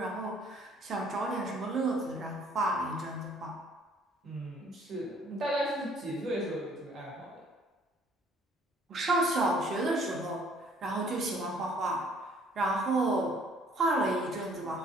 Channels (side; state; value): both; normal; correlation 0.59